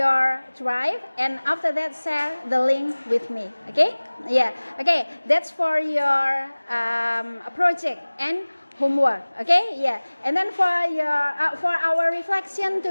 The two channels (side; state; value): both; inverted; correlation -1.00